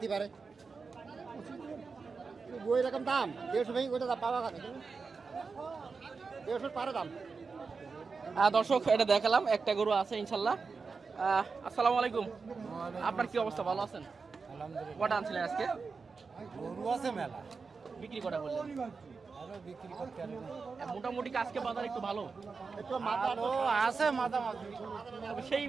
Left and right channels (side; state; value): left; quieter; 4.8 dB